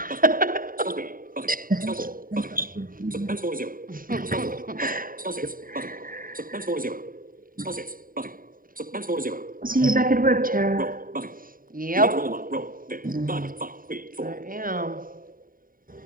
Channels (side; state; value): left; late; 0.41 ms